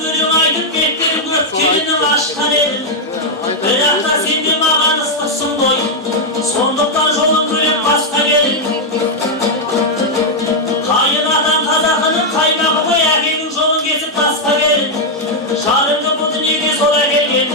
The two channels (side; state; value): both; normal; correlation -0.01